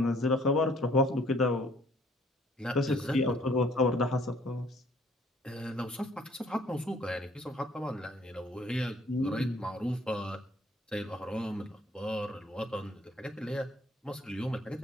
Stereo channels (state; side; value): normal; both; correlation 0.60